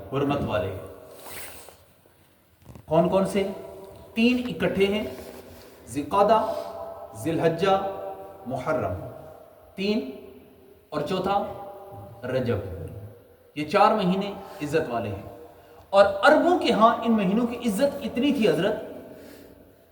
حرمت والے ہیں. کون کون سے؟ 3 اکٹھے ہیں، ذوالقعدہ، ذی الحجہ، محرم. 3 اور چوتھا رجب. یہ 4 مہینے عزت والے ہیں. اور عربوں کے ہاں ان مہینوں کی عزت اتنی تھی حضرت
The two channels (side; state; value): both; identical; correlation 1.00